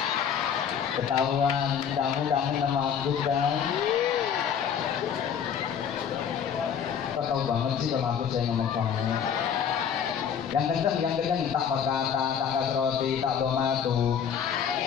ketahuan kamu kangen sama aku kan? Kok tahu banget sih sama aku saya ngomong kamu. Yang kenceng tak pakata, tak kasroti, tak domatu.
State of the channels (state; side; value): quieter; right; 7.8 dB